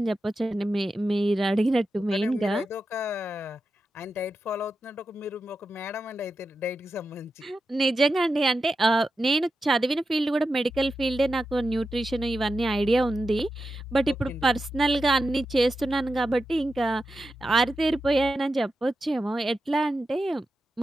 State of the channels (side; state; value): both; normal; correlation 0.90